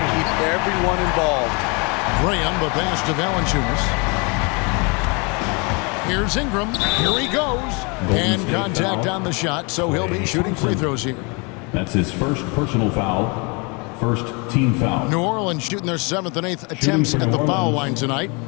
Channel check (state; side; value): quieter; right; 30.9 dB